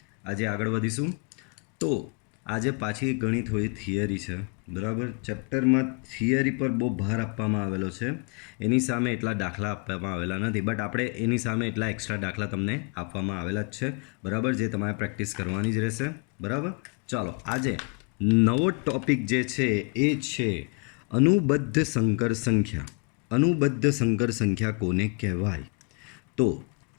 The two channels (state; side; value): quieter; right; 34.4 dB